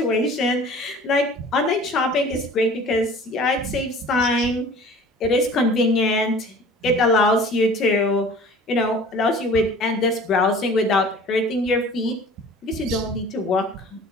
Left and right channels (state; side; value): normal; both; correlation 0.45